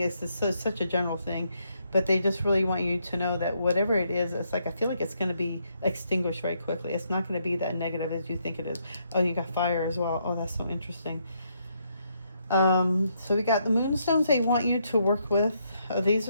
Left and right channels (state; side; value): inverted; both; correlation -0.76